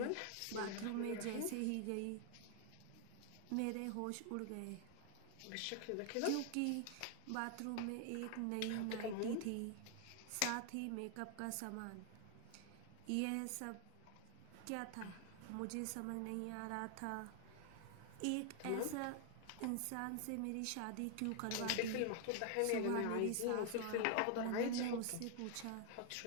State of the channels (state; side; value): different; both; correlation 0.00